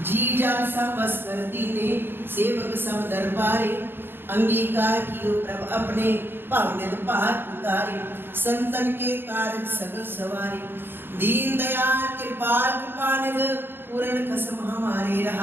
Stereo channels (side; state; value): left; late; 0.10 ms